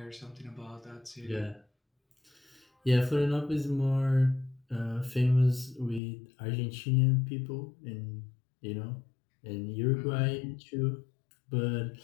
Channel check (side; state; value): right; drops out; at 6.0 s